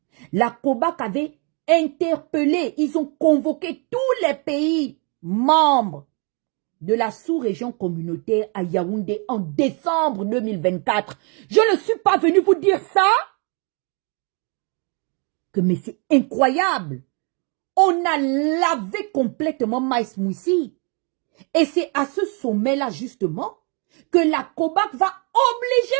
La COBAC avait interpellé, ils ont convoqué tous les pays membres de la sous-région communautaire à Yaoundé en décembre 2024. Je ne suis pas venu vous dire ça. Mais c'est incroyable. On a lavé complètement Maïs Moussi. Et c'est à ce sommet-là, justement, que la COBAC va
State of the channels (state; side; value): quieter; left; 35.1 dB